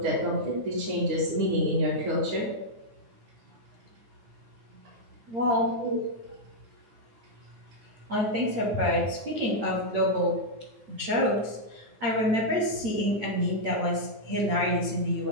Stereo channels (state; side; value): late; left; 8.8 ms